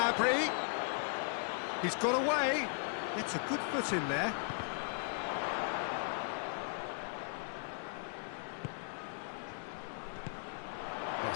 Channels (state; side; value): silent; right; digital silence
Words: He's got away. It's a good foot in there.